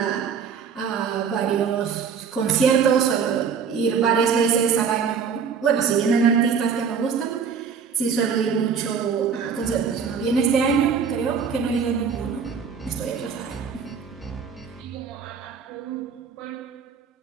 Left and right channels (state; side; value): quieter; left; 6.5 dB